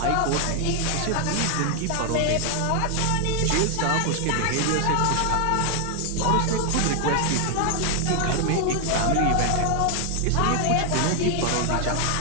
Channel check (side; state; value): both; different; correlation 0.00